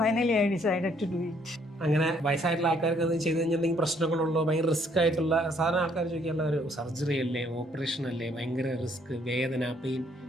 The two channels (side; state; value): both; normal; correlation 0.66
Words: Finally, I decided to do it. അങ്ങനെ വയസ്സായിട്ടുള്ള ആൾക്കാർക്ക് അത് ചെയ്ത് കഴിഞ്ഞാൽ എന്തെങ്കിലും പ്രശ്നങ്ങളുള്ളോ, ഭയങ്കര റിസ്ക് ആയിട്ടുള്ള സാധാരണ ആൾക്കാർ ചോദിക്കാനുള്ള ഒരു സർജറി അല്ലേ, ഓപ്പറേഷൻ അല്ലേ, ഭയങ്കര റിസ്ക്, വേദന, പെയിൻ